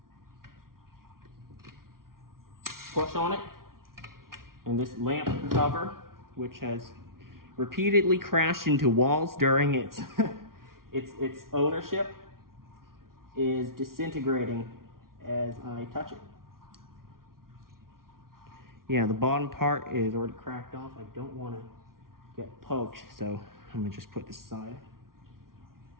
Push on it, and this lamp cover, which has repeatedly crashed into walls during its its ownership, is disintegrating as I touch it. Yeah, the bottom part is already cracked off. I don't want to get poked, so I'm gonna just put this aside.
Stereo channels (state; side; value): late; left; 0.93 ms